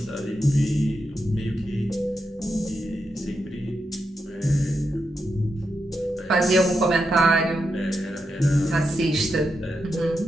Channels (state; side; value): normal; both; correlation 0.85